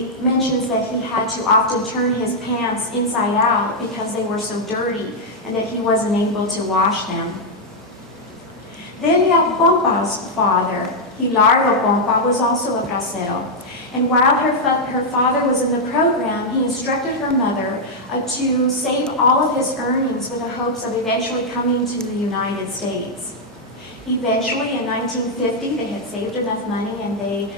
mentions that he had to often turn his pants inside out because they were so dirty and that he wasn't able to wash them. Delia Pompa's father, Hilardo Pompa, was also a bracero. And while her father was in the program, he instructed her mother to save all of his earnings with the hopes of eventually coming to the United States. Eventually, in 1950, they had saved enough money and they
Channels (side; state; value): both; normal; correlation -0.03